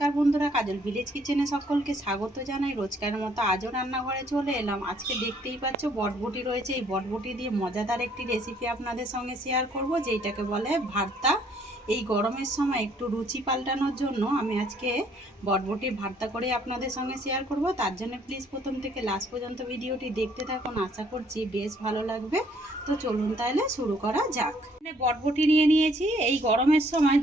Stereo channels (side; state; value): both; normal; correlation 0.63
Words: বন্ধুরা, কাজল ভিলেজ কিচেনে সকলকে স্বাগত জানাই। রোজকার মতো আজও রান্নাঘরে চলে এলাম। আজকে দেখতেই পাচ্ছ বটবটি রয়েছে। এই বটবটি দিয়ে মজাদার একটি রেসিপি আপনাদের সঙ্গে শেয়ার করব, যেটাকে বলে ভর্তা। এই গরমের সময় একটু রুচি পাল্টানোর জন্য আমি আজকে বটবটির ভর্তা করে আপনাদের সঙ্গে শেয়ার করব। তার জন্য প্লিজ প্রথম থেকে লাস্ট পর্যন্ত ভিডিওটি দেখতে থাকুন, আশা করছি বেশ ভালো লাগবে। তো চলুন তাহলে শুরু করা যাক। বটবটি নিয়ে নিয়েছি। এই গরমের সময়